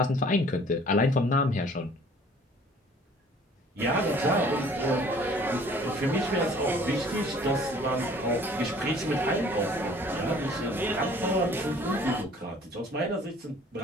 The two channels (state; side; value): normal; both; correlation 0.53